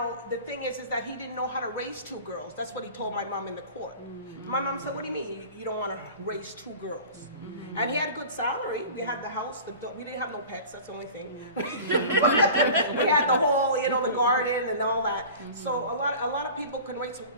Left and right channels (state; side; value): inverted; both; correlation -0.39